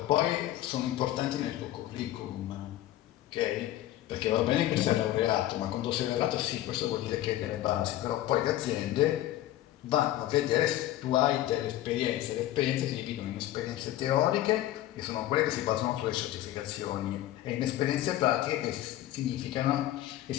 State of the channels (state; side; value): quieter; right; 14.1 dB